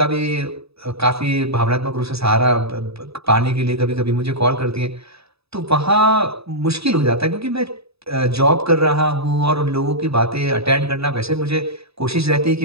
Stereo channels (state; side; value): late; left; 0.78 ms